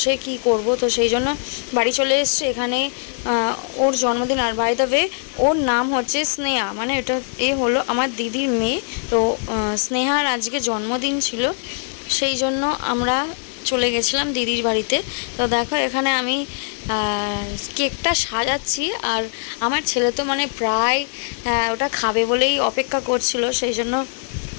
কি করব? তো সেই জন্য বাড়ি চলে এসেছি। এখানে ওর জন্মদিন, আর বাই দ্য ওয়ে ওর নাম হচ্ছে স্নেহা, মানে এটা হলো আমার দিদির মেয়ে। তো স্নেহার আজকে জন্মদিন ছিল, সেই জন্য আমরা চলে গেছিলাম দিদির বাড়িতে। তো দেখো, এখানে আমি কেকটা সাজাচ্ছি, আর আমার ছেলে তো মানে প্রায় ওটা খাবে বলেই অপেক্ষা করছিল, সেই জন্য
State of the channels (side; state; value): right; silent; 65 dB below the other